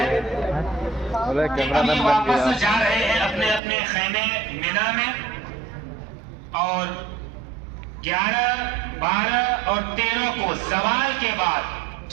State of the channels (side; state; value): left; drops out; at 3.6 s